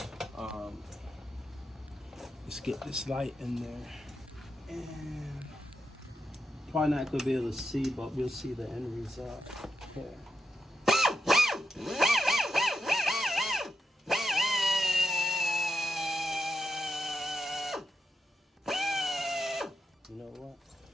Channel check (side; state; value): both; normal; correlation 0.86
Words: Let's get this light in there, and probably not gonna be able to see, but we'll see the end result here. You know what?